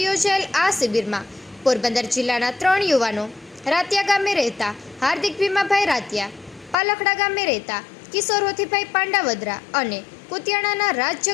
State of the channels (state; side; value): drops out; right; at 6.8 s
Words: યોજાયેલ આ શિબિરમાં પોરબંદર જિલ્લાના 3 યુવાનો રાતિયા ગામે રહેતા હાર્દિક ભીમાભાઈ રાતિયા, પાલખડા ગામે રહેતા કિશોર હોથીભાઈ પાંડાવદરા અને કુતિયાણાના રાજ